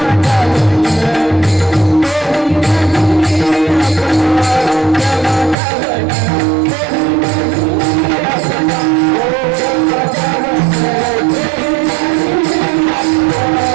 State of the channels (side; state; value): left; drops out; at 5.6 s